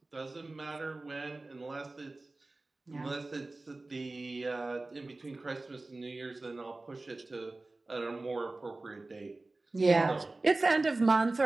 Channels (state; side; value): quieter; left; 3.1 dB